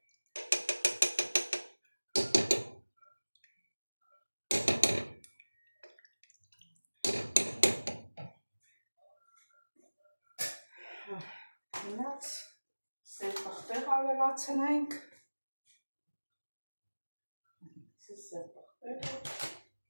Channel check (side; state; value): both; inverted; correlation -1.00